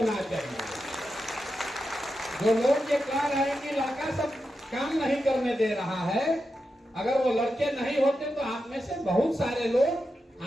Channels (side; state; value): both; normal; correlation 0.88